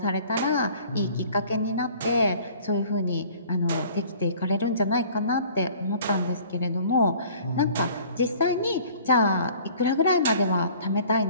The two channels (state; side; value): inverted; both; correlation -0.51